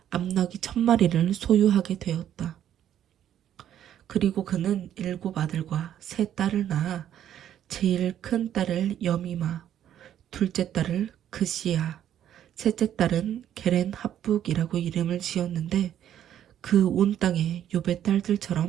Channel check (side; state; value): left; quieter; 10.7 dB